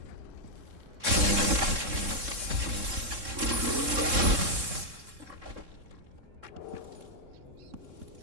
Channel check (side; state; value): left; late; 3.7 ms